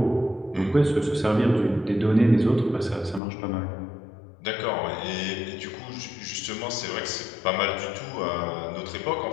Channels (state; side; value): drops out; right; at 3.2 s